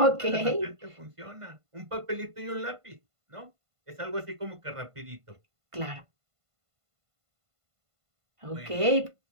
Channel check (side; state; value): left; late; 1.5 ms